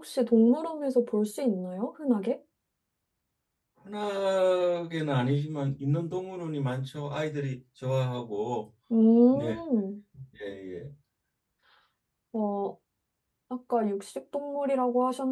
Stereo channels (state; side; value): identical; both; correlation 1.00